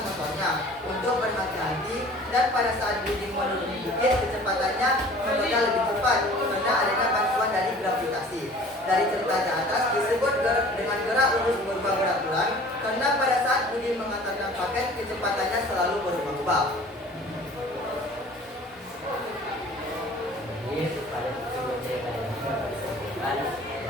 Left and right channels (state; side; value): normal; both; correlation 0.47